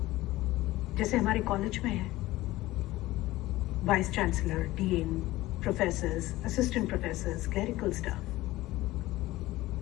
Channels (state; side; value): quieter; right; 17.6 dB